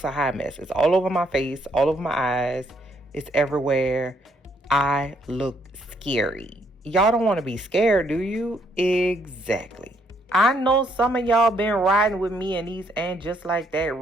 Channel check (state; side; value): normal; both; correlation 0.71